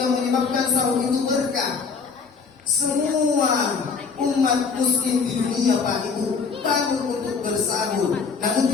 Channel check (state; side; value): quieter; right; 5.3 dB